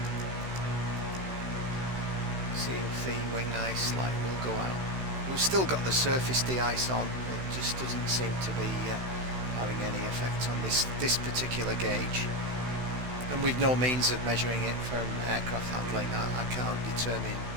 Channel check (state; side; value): late; left; 16 ms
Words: See if the wing ice light will go out. We've still got the surface de-ice on. It just doesn't seem to be having any effect on this particular gauge. And we've no means of measuring it from aircraft handling. I can't determine